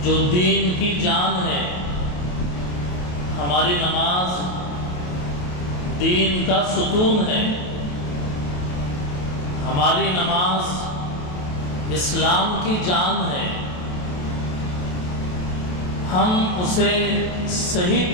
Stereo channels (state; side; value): late; right; 28 ms